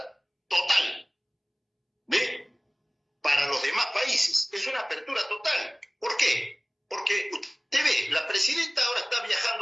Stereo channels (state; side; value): identical; both; correlation 1.00